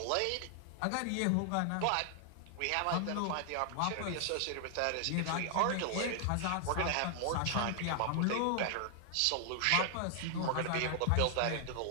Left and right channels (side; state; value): both; different; correlation 0.00